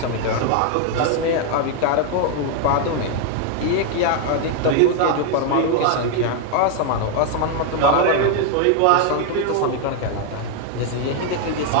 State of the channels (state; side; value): different; both; correlation 0.00